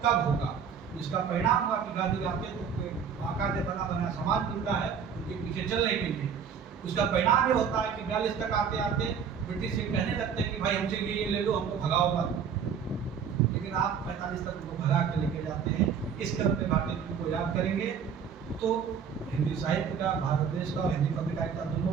कब होगा। इसका परिणाम हुआ कि गांधी आते तो बाकायदे बना बना समाज मिलता है उनके पीछे चलने के लिए। उसका परिणाम ये होता है कि 42 तक आते आते ब्रिटिश से कहने लगते हैं कि भाई हमसे ये ले लो, हमको भगाओ मत, लेकिन आप 45 तक उनको भगा के लेके जाते हैं। इस क्रम में भारतेंदु को याद करेंगे तो हिंदी साहित्य का, भारत देश का और हिंदी पत्रकारिता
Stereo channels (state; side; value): quieter; left; 7.0 dB